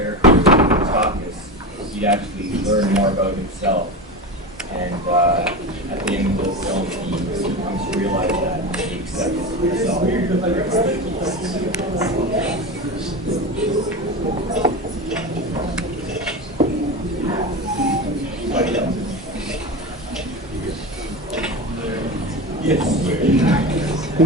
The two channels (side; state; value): both; normal; correlation 0.24